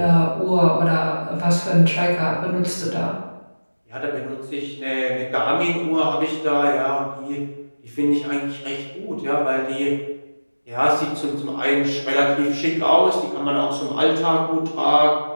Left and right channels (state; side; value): inverted; both; correlation -1.00